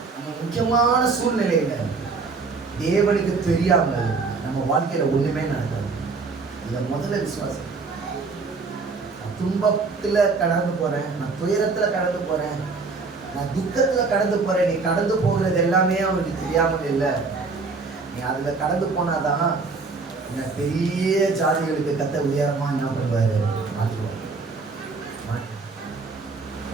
நம்ம முக்கியமான சூழ்நிலையில தேவனுக்கு தெரியாமல் நம்ம வாழ்க்கையில ஒண்ணுமே நடக்காது. இதை முதல்ல விசுவாசம். நான் துன்பத்துல கடந்து போறேன், நான் துயரத்துல கடந்து போறேன், நான் துக்கத்துல கடந்து போறேன். நீ கடந்து போகிறது எல்லாமே அவனுக்கு தெரியாமல் இல்லை. நீ அதுல கடந்து போனாதான் பெரிய ஜாதிகளுக்கு கத்த உயரமா என்ன பண்ணுவாரு? மாற்றுவார்.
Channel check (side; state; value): left; quieter; 4.3 dB